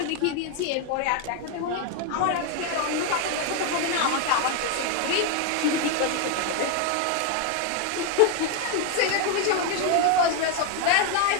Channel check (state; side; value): different; both; correlation 0.01